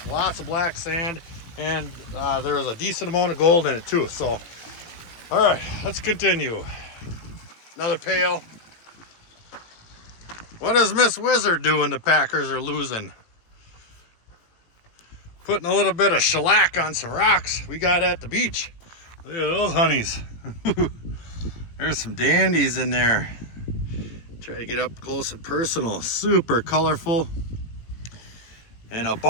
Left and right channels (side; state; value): right; late; 18 ms